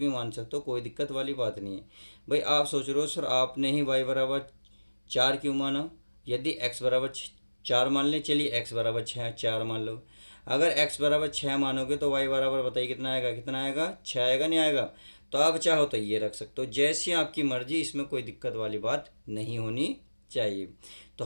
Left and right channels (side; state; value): both; inverted; correlation -1.00